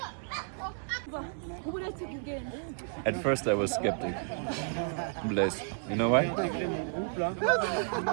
At first I was skeptic. Blaise. You know why?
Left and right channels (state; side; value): silent; left; 56 dB below the other